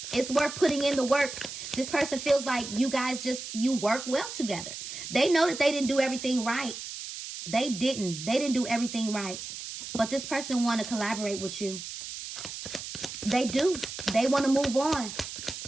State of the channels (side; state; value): right; noise; hiss, 9 dB below the sound